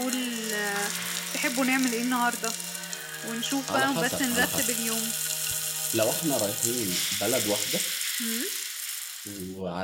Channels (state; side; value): identical; both; correlation 1.00